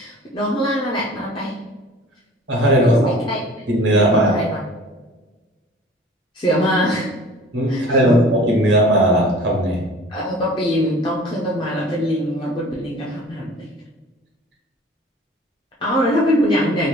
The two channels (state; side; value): normal; both; correlation 0.46